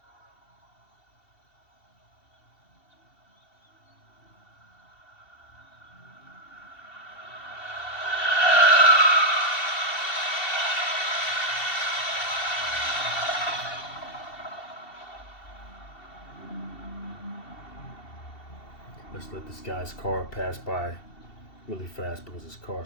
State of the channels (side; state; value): right; late; 2.7 ms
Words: Let's let this guy's car pass by really fast because his